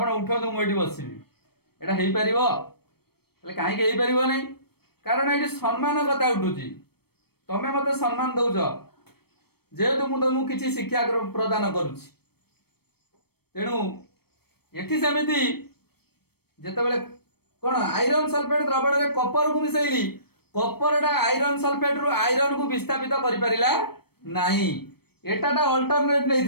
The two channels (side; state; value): right; late; 0.96 ms